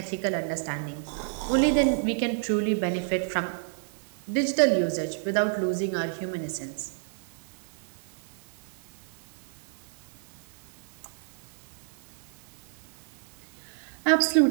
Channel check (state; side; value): silent; left; 57 dB below the other